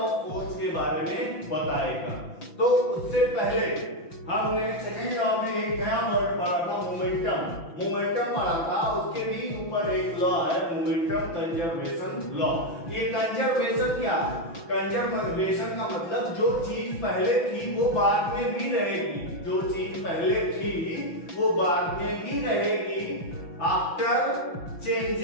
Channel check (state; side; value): late; right; 5.9 ms